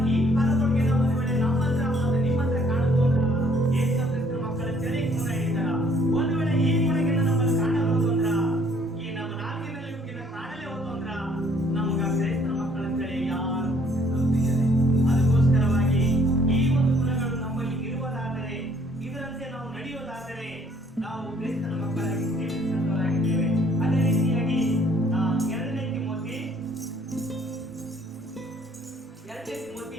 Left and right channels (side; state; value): both; normal; correlation 0.62